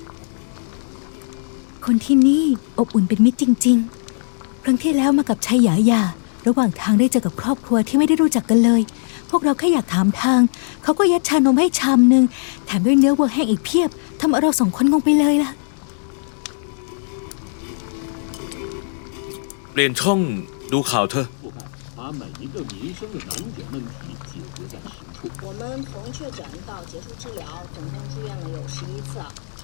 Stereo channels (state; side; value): silent; right; 66 dB below the other